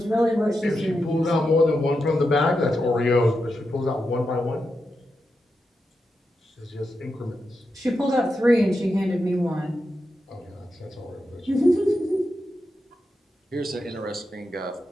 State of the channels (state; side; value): normal; both; correlation 0.87